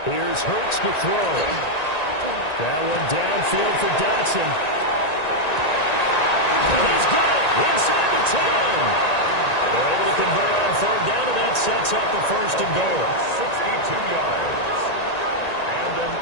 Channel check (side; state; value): right; late; 1.9 ms